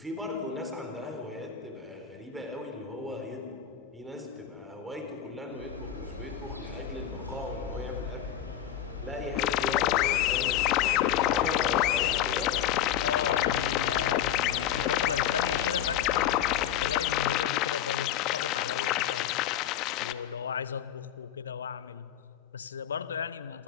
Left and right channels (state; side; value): quieter; right; 10.0 dB